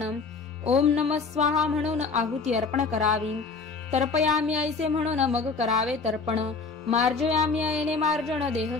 ओम नमः स्वाहा म्हणून आहुती अर्पण करावी, तर्पयामी ऐसे म्हणून मग करावे तर्पण, मार्जयामी ऐने मार्जन देह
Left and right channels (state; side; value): quieter; right; 4.5 dB